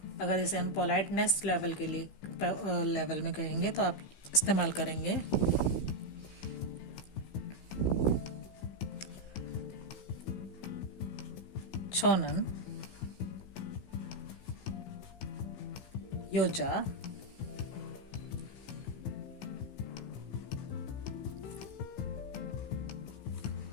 अगर इसे हम पोलाइटनेस लेवल में कहेंगे तो आप इस्तेमाल करेंगे छोनन योजा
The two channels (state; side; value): late; right; 16 ms